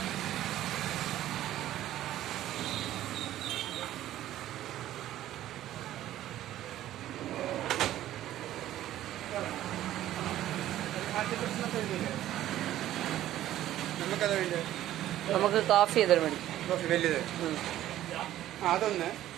നമുക്കത് വേണ്ടത് നമുക്ക് കോഫി ചെയ്താൽ മതി. കോഫി വലുത് അതൊന്ന്,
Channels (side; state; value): left; quieter; 13.3 dB